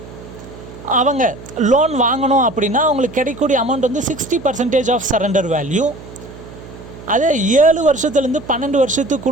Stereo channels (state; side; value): noise; right; hum, 16 dB below the sound